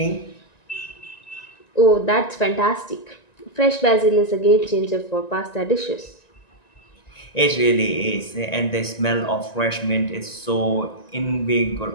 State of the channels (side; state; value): right; late; 1.9 ms